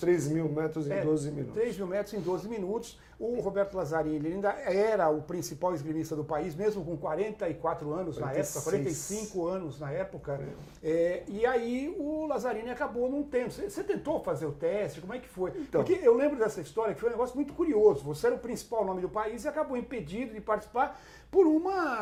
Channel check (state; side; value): identical; both; correlation 1.00